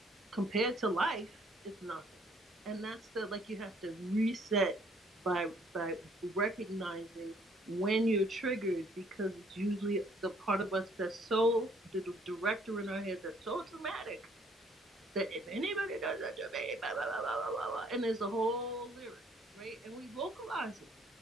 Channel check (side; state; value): both; normal; correlation 0.63